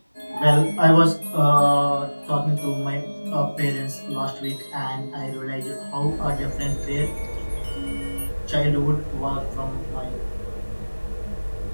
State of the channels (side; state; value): both; inverted; correlation -1.00